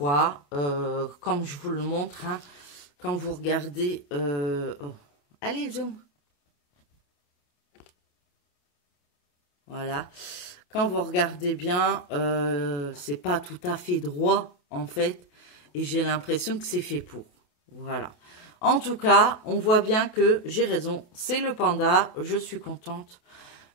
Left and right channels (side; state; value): right; late; 28 ms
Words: Comme je vous le montre, hein, quand vous regardez... oh. Allez, zoom. Voilà. Quand vous regardez bien, c'est pas tout à fait droit, en fait. Et j'ai l'impression que c'est fait pour. Voilà. En tout cas, on voit bien que j'ai raison. C'est le panda. Je suis contente.